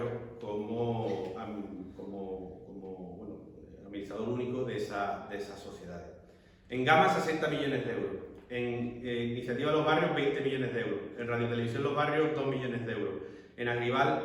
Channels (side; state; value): both; identical; correlation 1.00